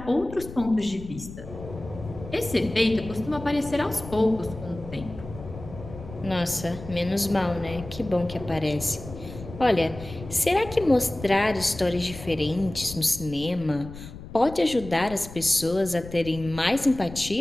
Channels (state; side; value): noise; left; rumble, 13 dB below the sound